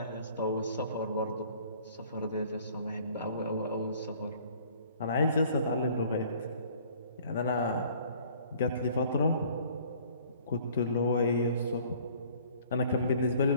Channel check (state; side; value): inverted; both; correlation -0.55